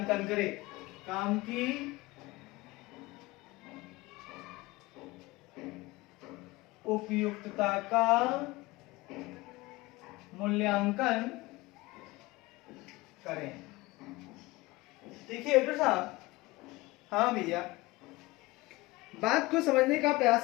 करे। काम की उपयुक्तता का मूल्यांकन करें। देखिए डॉक्टर साहब, हाँ भैया, बात को समझने का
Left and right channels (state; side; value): quieter; right; 21.1 dB